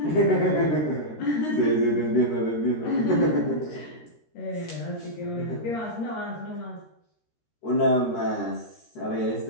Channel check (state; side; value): late; right; 13 ms